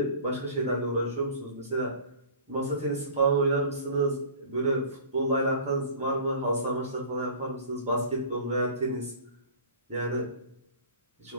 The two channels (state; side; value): inverted; both; correlation -0.42